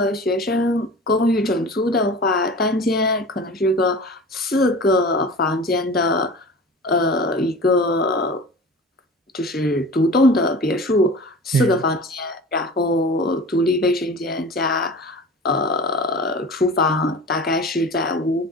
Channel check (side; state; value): both; normal; correlation 0.37